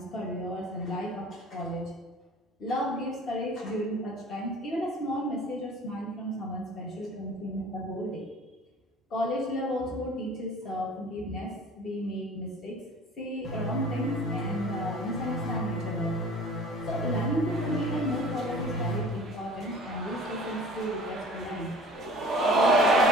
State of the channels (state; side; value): normal; both; correlation 0.45